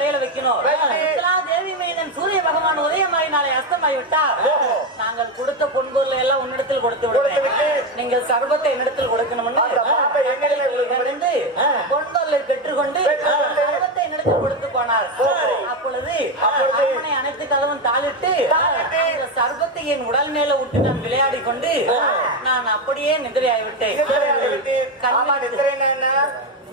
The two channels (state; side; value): normal; both; correlation 0.12